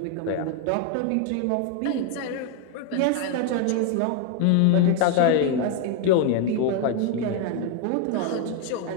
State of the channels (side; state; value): both; different; correlation 0.00